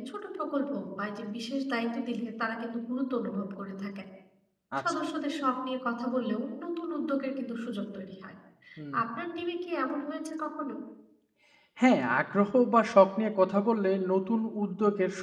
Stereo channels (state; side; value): identical; both; correlation 1.00